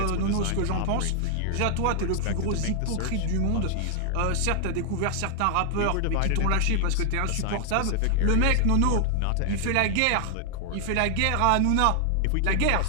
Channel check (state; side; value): different; both; correlation 0.00